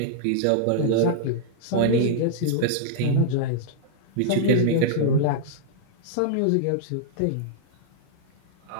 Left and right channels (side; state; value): both; different; correlation -0.01